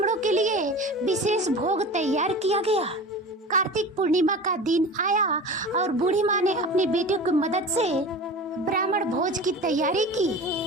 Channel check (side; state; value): both; normal; correlation 0.35